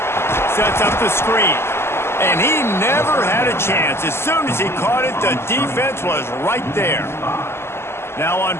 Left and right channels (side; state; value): right; late; 0.12 ms